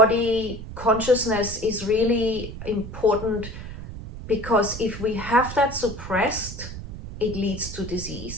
consciousness is really important, because if we have that suppressed, it leads to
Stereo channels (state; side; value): noise; right; rumble, 10 dB below the sound